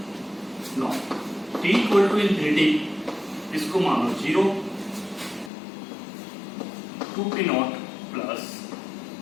No t equal to infinity इसको मानो 0, 2p naught plus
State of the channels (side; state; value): right; drops out; at 5.5 s